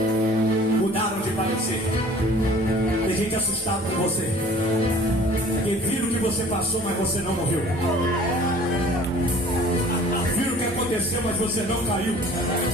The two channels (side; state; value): both; normal; correlation 0.49